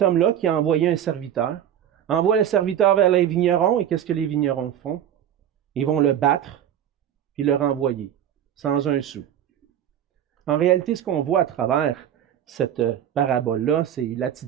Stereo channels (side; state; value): left; quieter; 10.2 dB